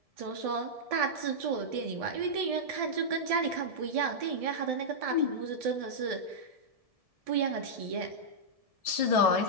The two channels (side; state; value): left; late; 1.7 ms